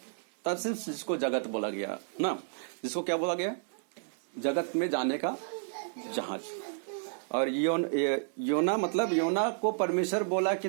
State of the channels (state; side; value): silent; left; digital silence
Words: तरसीस, जिसको जगत बोला गया ना, जिसको क्या बोला गया? जगत में जाने का जहाज। और योना मतलब योना को परमेश्वर बोला